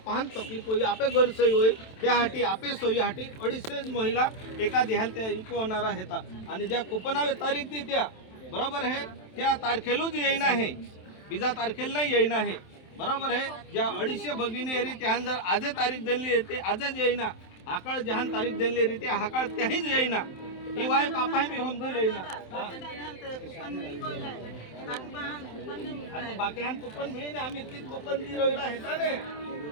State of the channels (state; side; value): late; right; 27 ms